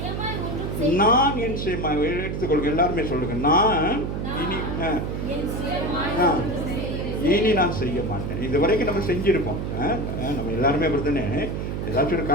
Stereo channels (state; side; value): noise; right; hum, 3 dB below the sound